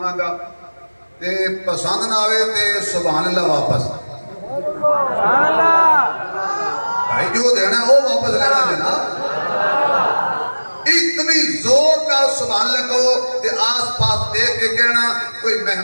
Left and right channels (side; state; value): both; inverted; correlation -1.00